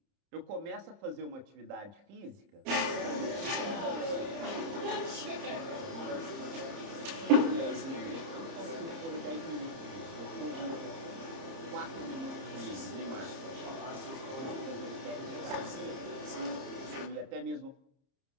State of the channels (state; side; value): late; left; 30 ms